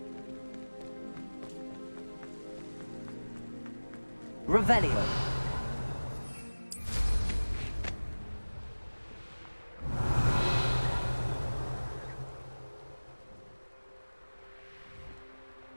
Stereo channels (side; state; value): both; inverted; correlation -1.00